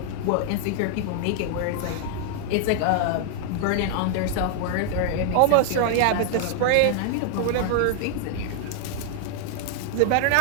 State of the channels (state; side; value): different; both; correlation 0.00